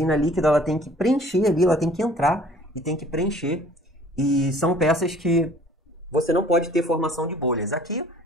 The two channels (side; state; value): both; normal; correlation 0.52